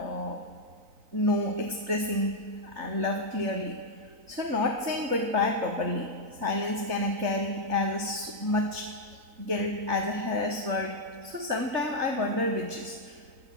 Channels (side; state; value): left; late; 3.9 ms